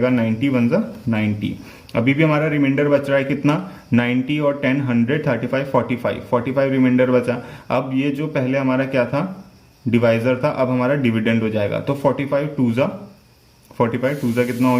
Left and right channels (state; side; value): identical; both; correlation 1.00